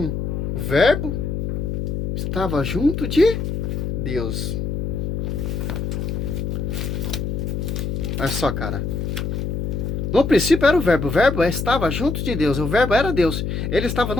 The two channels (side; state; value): left; noise; hum, 2 dB below the sound